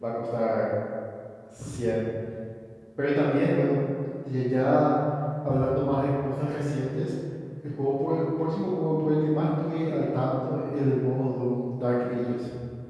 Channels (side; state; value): both; identical; correlation 1.00